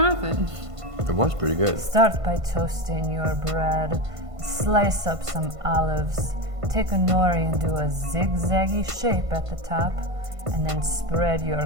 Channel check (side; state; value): left; late; 1.5 ms